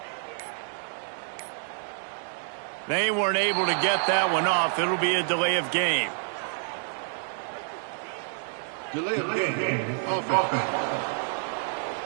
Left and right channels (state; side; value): silent; left; digital silence